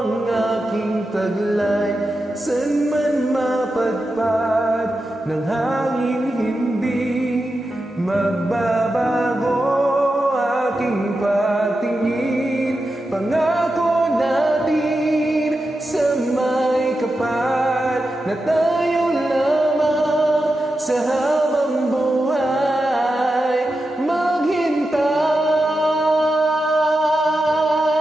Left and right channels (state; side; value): normal; both; correlation 0.90